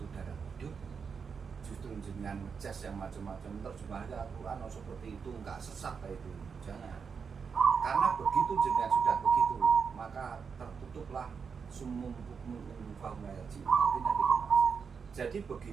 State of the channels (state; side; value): quieter; left; 6.0 dB